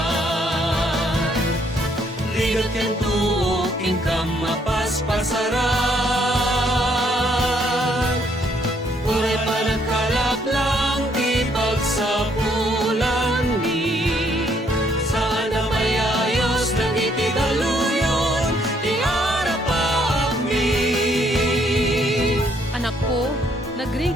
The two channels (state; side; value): normal; both; correlation 0.69